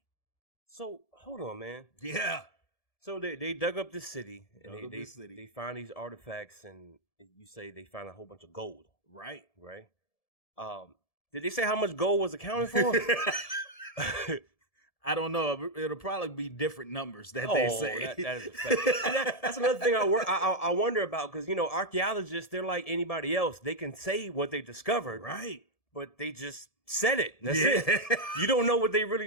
So hold on, man. Yeah. So they dug up this city and Dug up they this city. they find these artifacts and you say they found a whole bunch of gold, Right. right? Did they say how much gold was accounted for? I don't know. It'll probably be different numbers that they say. That is a fact. That's another thing I wonder about because archaeologists, they're like anybody else. They can say what they discovered, Right. but they just said it. That's it. You don't know what they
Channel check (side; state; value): right; late; 1.7 ms